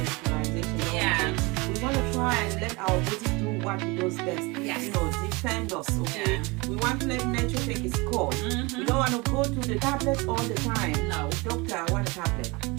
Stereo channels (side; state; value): left; quieter; 25.8 dB